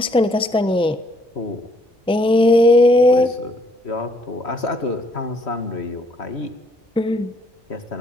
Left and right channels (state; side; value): normal; both; correlation 0.68